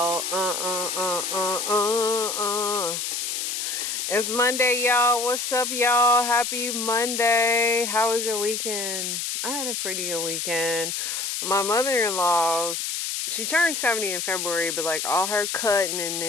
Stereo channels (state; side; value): noise; left; hiss, 2 dB below the sound